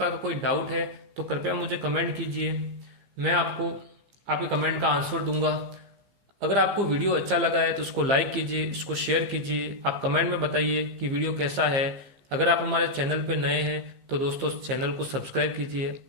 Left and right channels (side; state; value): left; late; 15 ms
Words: का कोई डाउट है तो कृपया मुझे कमेंट कीजिए, मैं आपको आपके कमेंट का आंसर दूंगा। अगर आपको वीडियो अच्छा लगा है तो उसको लाइक कीजिए, इसको शेयर कीजिए, आप कमेंट में बताइए कि वीडियो कैसा है। अगर आप हमारे चैनल पे नए हैं तो दोस्तों चैनल को सब्सक्राइब कीजिए,